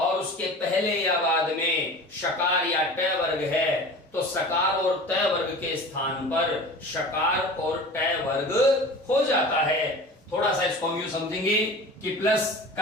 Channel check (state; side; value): normal; both; correlation 0.38